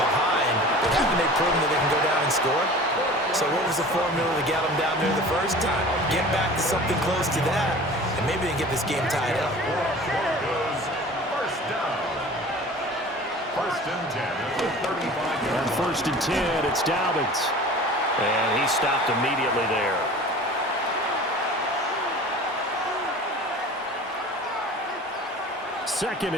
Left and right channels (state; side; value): normal; both; correlation 0.41